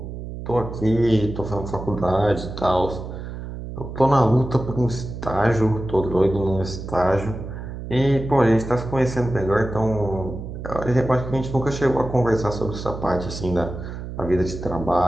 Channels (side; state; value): right; noise; hum, 9 dB below the sound